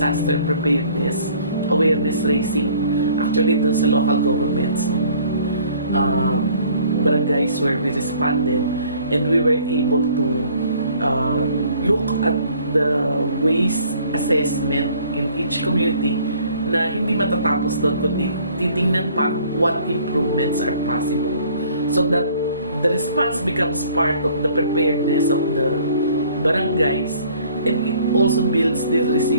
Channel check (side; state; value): both; inverted; correlation -0.56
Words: preparedness, awareness raising, actually dun sa local governments, barangays where we responded, and we were able to look at the waste assessment in each community na hindi matatapos doon, kundi titingnan pa what improvements are possible, so that the response becomes part of the preparedness of the barangays, and it also builds the